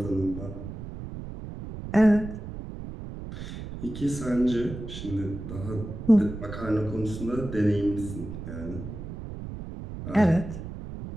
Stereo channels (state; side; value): noise; right; rumble, 9 dB below the sound